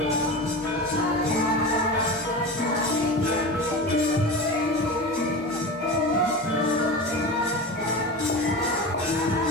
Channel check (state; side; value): normal; both; correlation 0.28